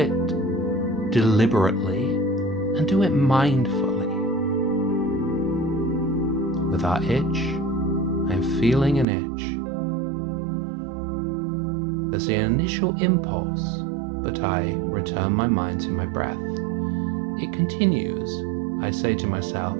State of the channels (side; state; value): left; drops out; at 9.1 s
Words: deliberately and do it mindfully. With our itch, I'm feeling an itch. There's the initial impulse, but I return my mind to my breath. It continues. I say to myself,